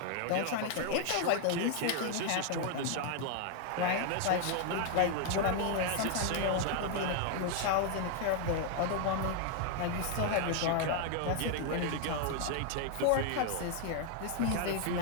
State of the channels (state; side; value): different; both; correlation 0.00